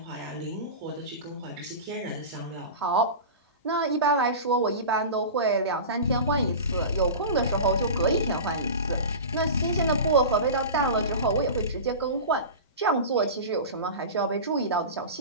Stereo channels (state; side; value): inverted; both; correlation -0.30